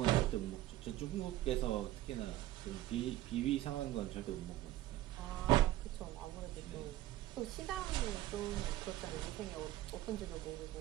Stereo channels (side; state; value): left; quieter; 15.0 dB